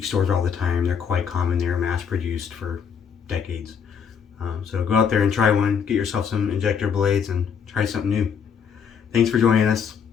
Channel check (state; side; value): quieter; right; 7.0 dB